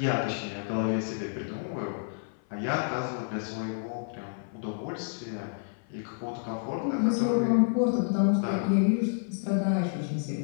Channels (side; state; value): right; silent; 56 dB below the other